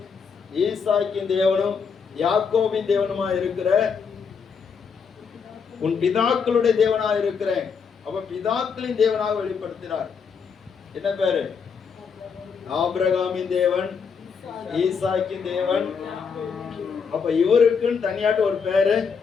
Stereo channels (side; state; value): right; quieter; 6.0 dB